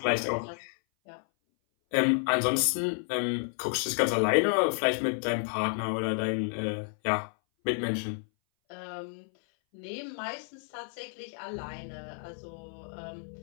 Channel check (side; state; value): right; silent; 57 dB below the other